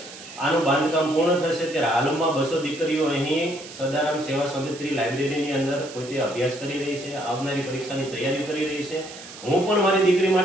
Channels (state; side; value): noise; right; hiss, 15 dB below the sound